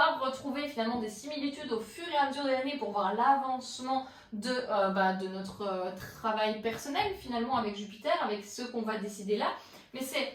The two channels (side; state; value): both; identical; correlation 1.00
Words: retrouver finalement des similitudes au fur et à mesure de l'année pour voir l'avancement de notre travail personnel finalement avec Jupiter, avec ce qu'on va décider là. Mais